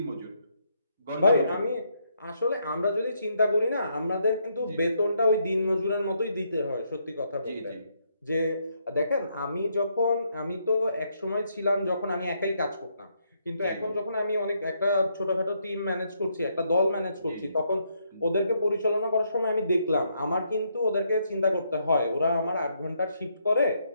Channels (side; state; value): both; inverted; correlation -0.75